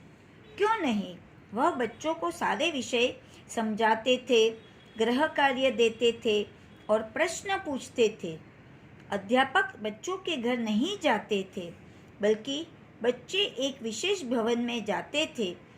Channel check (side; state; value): both; identical; correlation 1.00